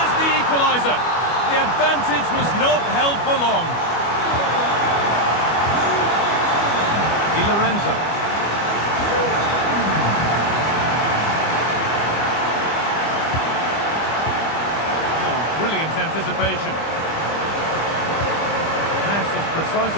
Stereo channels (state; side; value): late; right; 25 ms